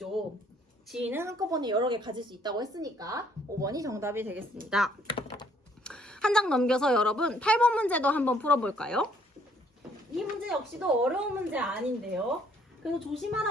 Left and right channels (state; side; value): normal; both; correlation 0.64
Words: 지인은 한꺼번에 여러 개 가질 수 있다고 했으니까 5번이 정답이 되겠습니다. 한 장 넘겨서 여러분 8번 문제도 한번 풀어볼까요? 이 문제 역시도 어려운 문제 아닌데요. 그래서